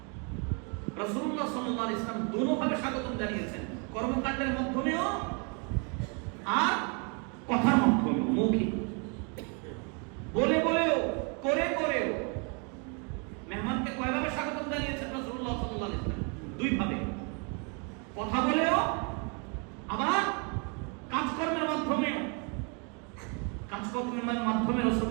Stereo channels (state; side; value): quieter; left; 35.4 dB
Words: রাসূলুল্লাহ সাল্লাল্লাহু আলাইহি ওয়াসাল্লাম দুটোভাবে স্বাগতম জানিয়েছেন, কর্মকাণ্ডের মাধ্যমেও আর কথার মাধ্যমেও, মৌখিক, বলে বলেও, করে করেও। মেহমানকে কয়ভাবে স্বাগতম জানিয়েছেন রাসূলুল্লাহ সাল্লাল্লাহু আলাইহি ওয়াসাল্লাম? দুই ভাবে, কথা বলেও আবার কাজকর্মের মাধ্যমে। কাজকর্মের মাধ্যমে